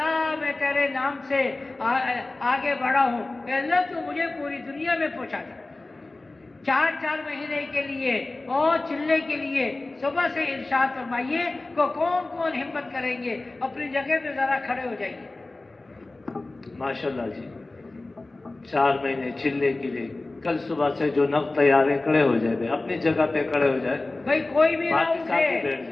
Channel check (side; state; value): right; quieter; 3.1 dB